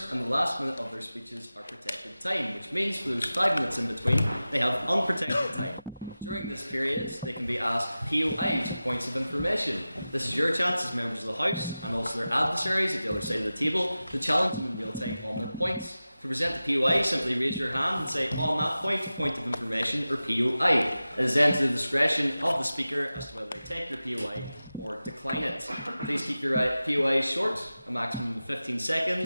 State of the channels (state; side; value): inverted; both; correlation -0.95